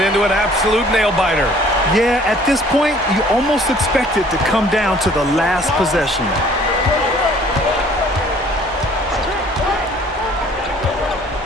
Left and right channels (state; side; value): normal; both; correlation 0.55